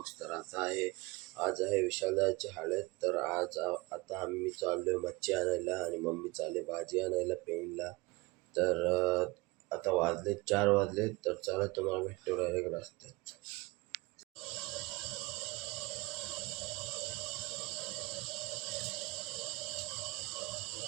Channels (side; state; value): left; quieter; 23.4 dB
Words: तर आज आहे विशालदाची हळद. तर आता आम्ही चाललोय मच्छी आणायला आणि मम्मी चालले भाजी आणायला पेनला. तर आता वाजले 4 वाजले. तर चला तुम्हाला भेटतो डायरेक्ट रस्त्यात.